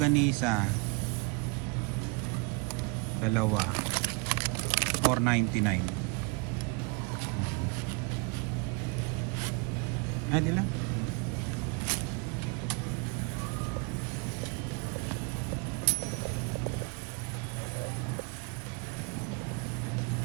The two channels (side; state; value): left; quieter; 29.6 dB